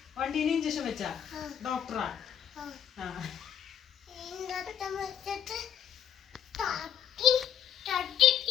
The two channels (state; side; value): quieter; right; 9.2 dB